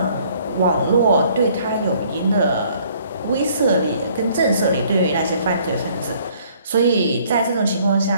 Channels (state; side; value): inverted; both; correlation -0.61